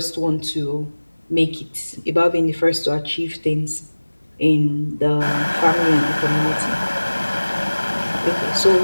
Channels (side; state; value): both; inverted; correlation -1.00